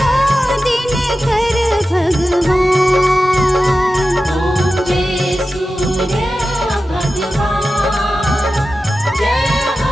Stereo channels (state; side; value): normal; both; correlation 0.93